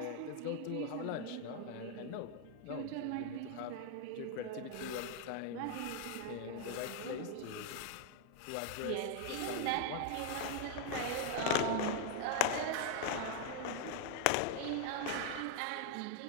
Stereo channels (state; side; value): different; both; correlation 0.00